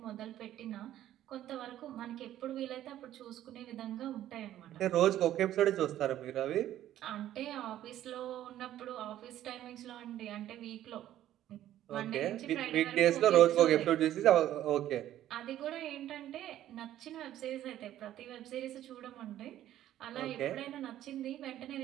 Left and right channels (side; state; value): left; quieter; 12.6 dB